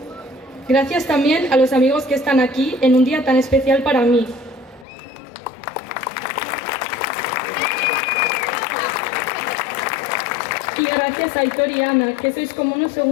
Gracias también a los amigos que están aquí en un día tan especial para mí. Y gracias a Aitor y Ana, que sois como unos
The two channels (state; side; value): drops out; right; at 4.9 s